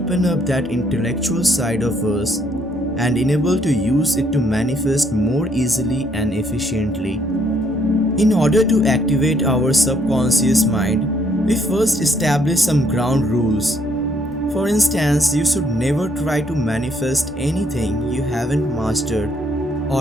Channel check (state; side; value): normal; both; correlation 0.68